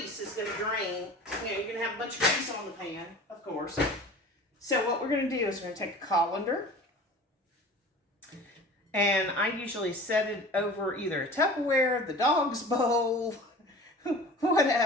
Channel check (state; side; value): normal; both; correlation 0.40